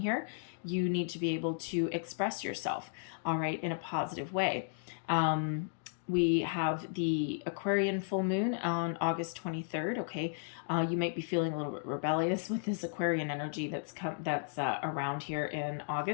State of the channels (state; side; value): silent; right; digital silence